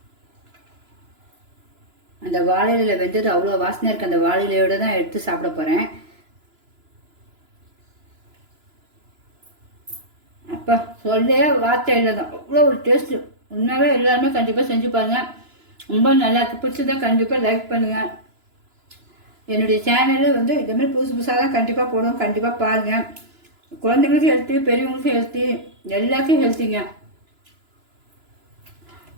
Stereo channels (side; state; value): left; late; 2.9 ms